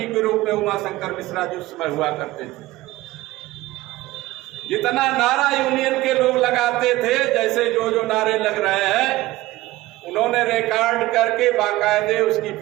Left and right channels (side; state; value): left; quieter; 17.9 dB